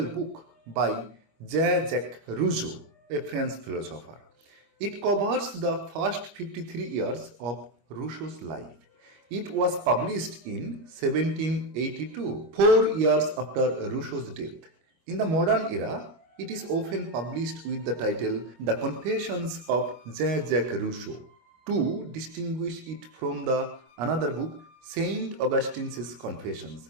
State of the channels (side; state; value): left; late; 25 ms